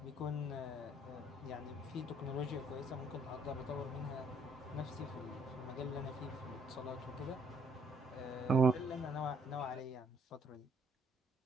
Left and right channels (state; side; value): normal; both; correlation 0.65